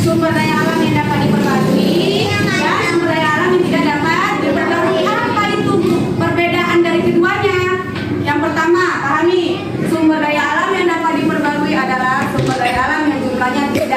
Sumber daya alam yang dapat diperbarui dan sumber daya alam yang tidak dapat diperbarui. Apa itu perbedaan dari keduanya? Yang pertama, pahami, sumber daya alam yang dapat diperbarui adalah sumber daya alam yang jumlahnya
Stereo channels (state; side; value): identical; both; correlation 1.00